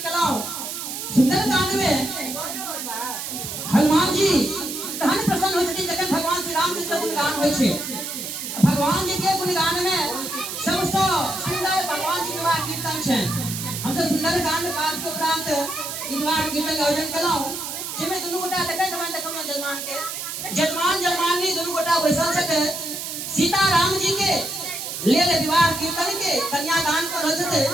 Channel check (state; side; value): noise; right; hiss, 6 dB below the sound